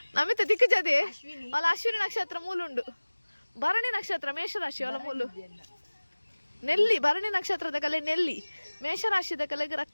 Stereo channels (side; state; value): both; inverted; correlation -1.00